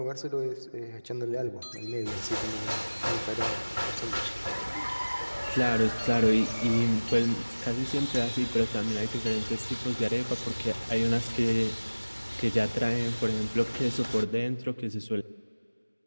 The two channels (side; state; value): both; inverted; correlation -1.00